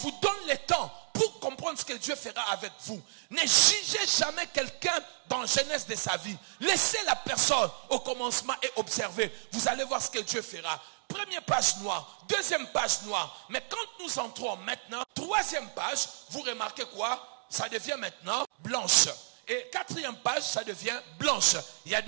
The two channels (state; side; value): silent; left; digital silence